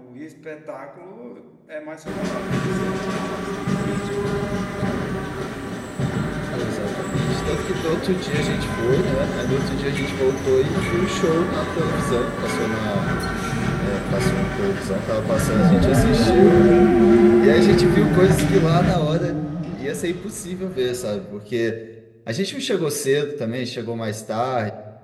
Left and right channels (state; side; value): identical; both; correlation 1.00